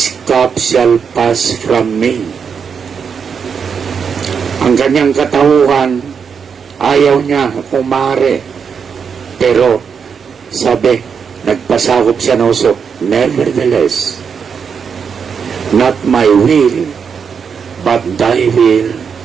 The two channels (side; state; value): left; quieter; 6.5 dB